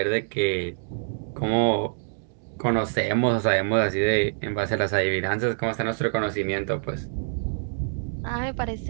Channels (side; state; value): left; silent; digital silence